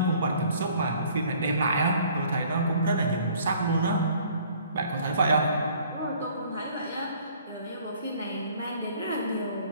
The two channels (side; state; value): both; inverted; correlation -0.56